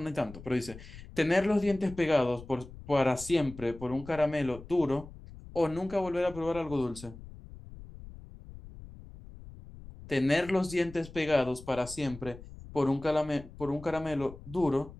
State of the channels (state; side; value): noise; left; rumble, 16 dB below the sound